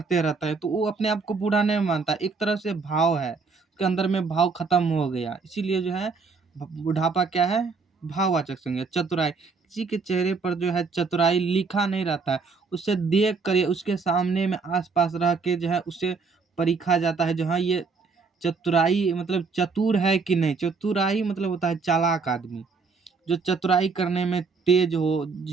रहता है, तो वो अपने आप को बूढ़ा नहीं मानता। एक तरह से भाव है, उसके अंदर में भाव खत्म हो गया। इसीलिए जो है बुढ़ापा क्या है? भाववाचक संज्ञा। चतुराई किसी के चेहरे पर जो है चतुराई लिखा नहीं रहता है, उसे देख कर उसके सामने में आसपास रह के जो है उसे परखा जाता है। जो हाँ ये चतुराई मतलब चतुर है कि नहीं। चतुराई मतलब होता है चालाक आदमी, जो चतुराई करने में तेज हो,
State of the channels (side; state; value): left; quieter; 4.7 dB